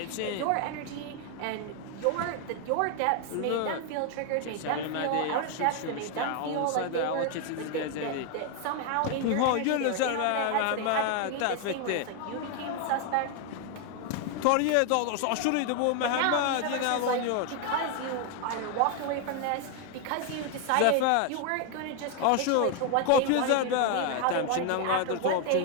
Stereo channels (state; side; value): different; both; correlation 0.01